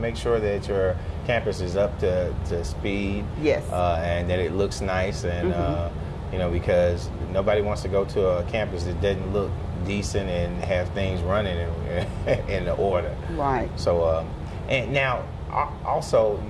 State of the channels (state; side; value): identical; both; correlation 1.00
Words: sure that your campus is up to speed. Yes. And that it looks nice, and you know, because nobody wants to go to a campus that doesn't look decent and have things running in order. Right. So, and now also